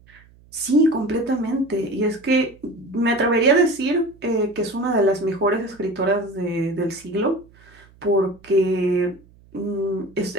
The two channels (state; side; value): noise; right; hum, 27 dB below the sound